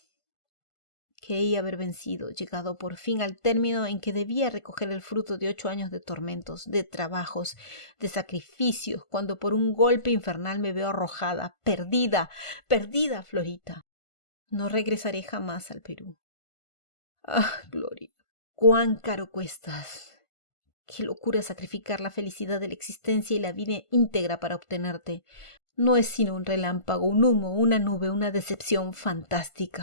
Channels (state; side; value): late; right; 1.5 ms